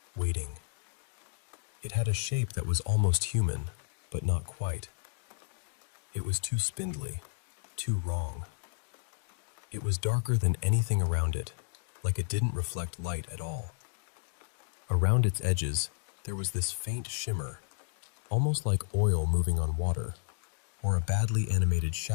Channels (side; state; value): right; silent; digital silence